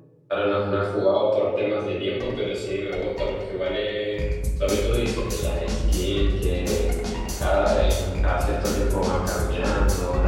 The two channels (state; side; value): identical; both; correlation 1.00